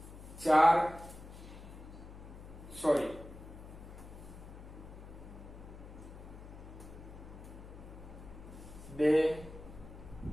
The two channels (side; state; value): left; noise; hum, 14 dB below the sound